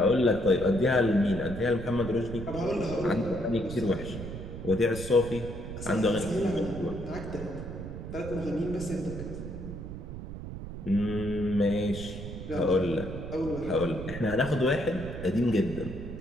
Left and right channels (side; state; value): right; noise; rumble, 9 dB below the sound